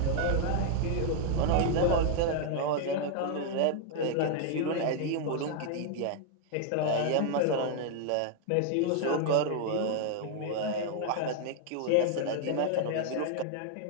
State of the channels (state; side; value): different; both; correlation 0.00